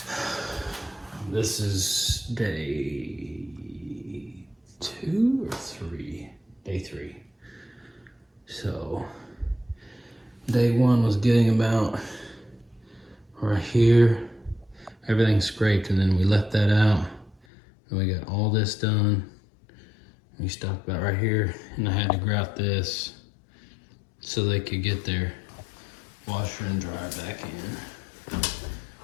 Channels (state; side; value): drops out; right; at 17.4 s